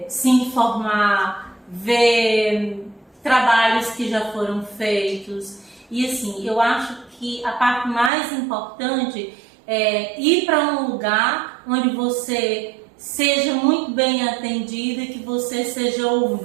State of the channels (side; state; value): left; drops out; at 8.1 s